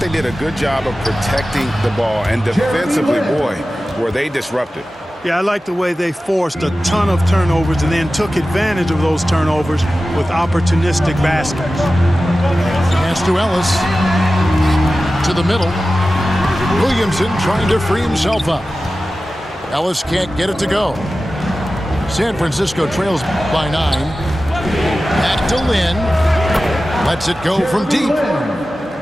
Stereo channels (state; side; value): normal; both; correlation 0.95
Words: did a good job of protecting the ball. And defensively, boy, were they disrupted. Yeah, I like the way they forced a ton of turnovers and then took advantage of those turnovers with opportunistic baskets. Pass to Ellis. To the middle. Williamson trying to free himself up. Ellis can't get it to go. San Francisco trails by 9. Back to Lynn. Lets it go from deep.